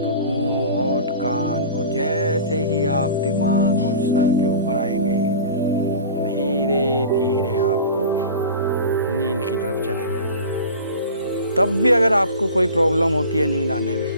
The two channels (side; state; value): both; inverted; correlation -0.37